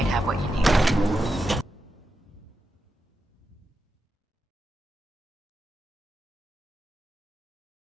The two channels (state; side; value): normal; both; correlation 0.88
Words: have what you need.